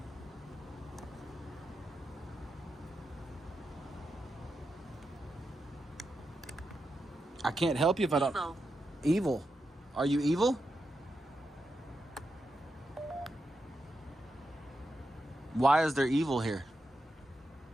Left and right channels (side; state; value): both; normal; correlation 0.87